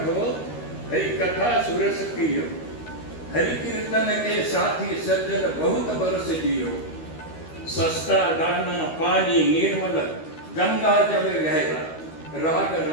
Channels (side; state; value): right; late; 13 ms